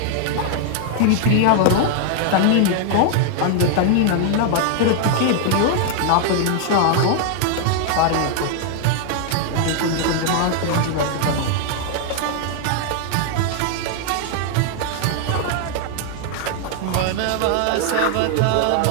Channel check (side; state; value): both; different; correlation 0.00